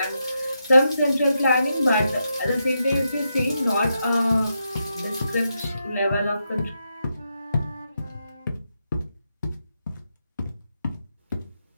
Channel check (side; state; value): both; inverted; correlation -0.84